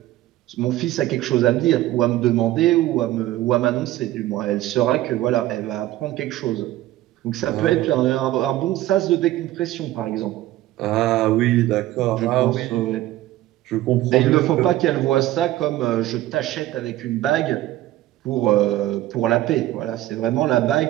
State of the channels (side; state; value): left; quieter; 15.2 dB